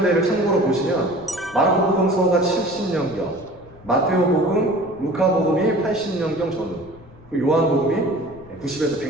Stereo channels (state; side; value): noise; left; rumble, 22 dB below the sound